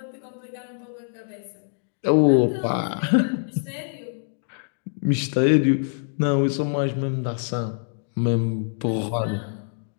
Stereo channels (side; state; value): right; silent; digital silence